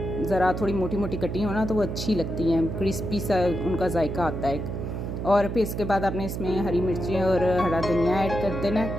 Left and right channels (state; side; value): noise; right; hum, 4 dB below the sound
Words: ज़रा थोड़ी मोटी मोटी कटी हो ना तो वो अच्छी लगती हैं, क्रिस्पी सा उनका जायका आता है। और फिर इसके बाद आपने इसमें हरी मिर्चें और हरा धनिया ऐड कर देना